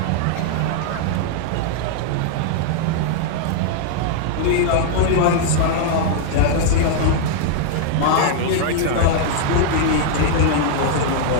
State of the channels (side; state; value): both; different; correlation 0.00